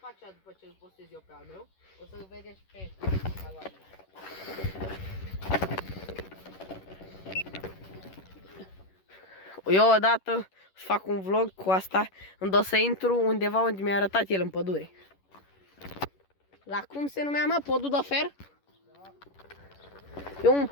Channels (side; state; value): right; late; 11 ms